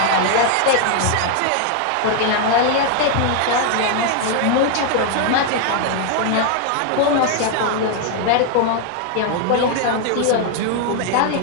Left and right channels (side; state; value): both; different; correlation 0.00